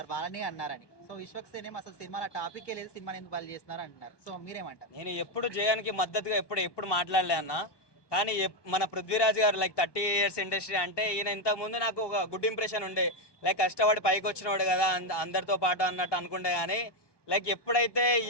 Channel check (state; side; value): late; right; 1.2 ms